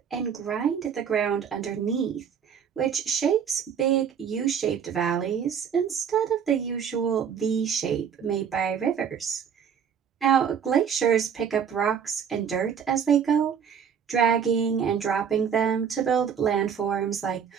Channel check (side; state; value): left; quieter; 7.6 dB